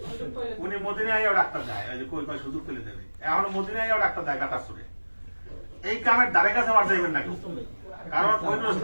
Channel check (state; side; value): inverted; both; correlation -1.00